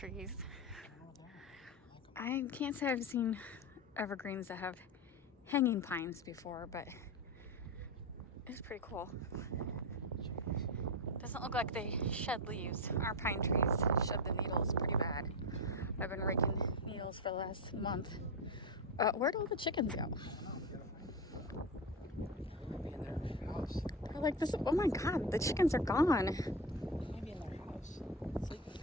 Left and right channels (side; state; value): both; normal; correlation 0.17